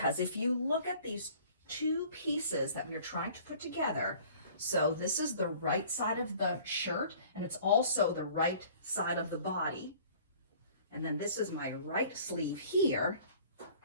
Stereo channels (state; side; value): inverted; both; correlation -0.51